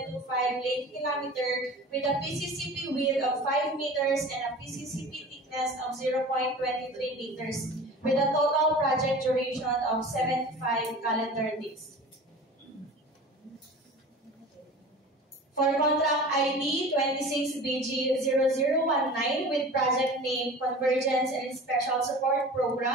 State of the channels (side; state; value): both; normal; correlation 0.38